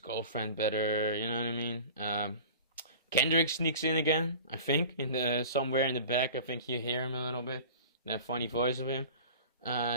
better, you know what I mean? Kendrick sneaks in again, I think, somewhere in the back. I think you hear him a little bit, that funny voice of him.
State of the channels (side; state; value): both; inverted; correlation -0.40